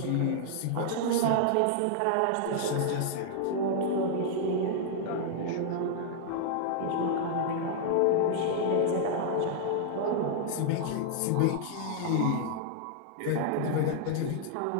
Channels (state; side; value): different; both; correlation -0.01